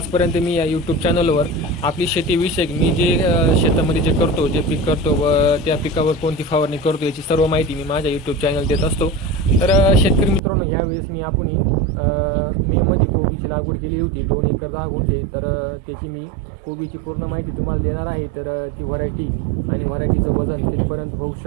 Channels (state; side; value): drops out; left; at 10.4 s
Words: मी या यूट्यूब चॅनलवर आपली शेतीविषयक मी जे शेतामध्ये जे करतो, जे पीक करतो व त्या पिकावर कोणती फवारणी करतो याची सर्व माहिती मी माझ्या यूट्यूब चॅनल देत असतो. तर शेतकरी मित्रांनो, यावेळेस मी आपण मेमध्ये कोबीची लागवड केली होती 2 एकर 10 गुंठे. तर त्याची मी कोबीची पूर्ण माहिती तुम्हाला देणार आहे. तर ती व्हरायटी आणि व्हरायटीचं वजन कितपर्यंत होऊ